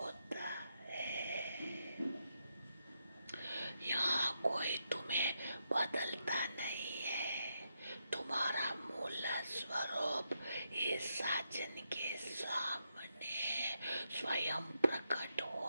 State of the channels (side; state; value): both; inverted; correlation -0.82